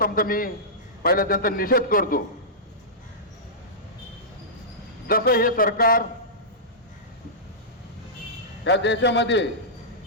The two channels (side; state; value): both; normal; correlation -0.15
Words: मी पहिला त्यांचा निषेध करतो। जसं हे सरकार या देशामध्ये